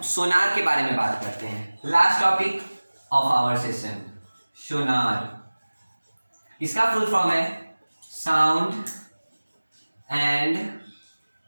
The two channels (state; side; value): inverted; both; correlation -1.00